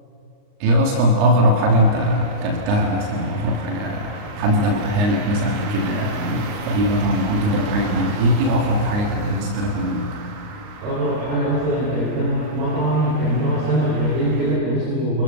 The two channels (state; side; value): late; left; 39 ms